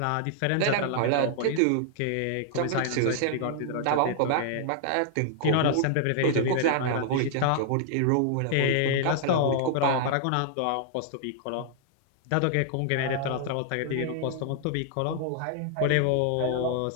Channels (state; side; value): different; both; correlation -0.01